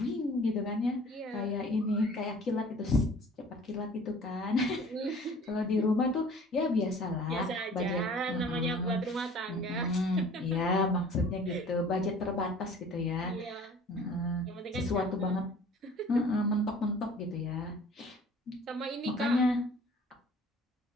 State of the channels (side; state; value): both; normal; correlation 0.49